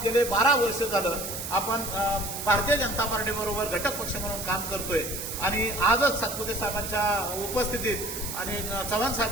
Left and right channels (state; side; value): noise; right; hiss, 6 dB below the sound